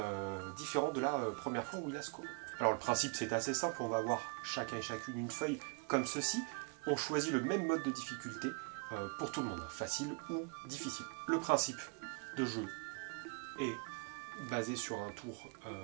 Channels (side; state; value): left; quieter; 34.7 dB